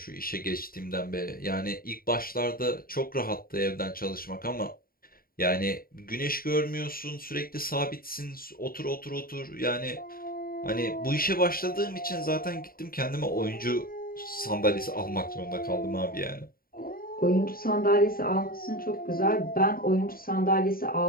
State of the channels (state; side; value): late; right; 0.43 ms